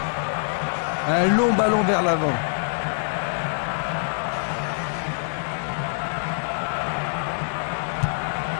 Un long ballon vers l'avant.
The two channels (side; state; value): right; silent; 62 dB below the other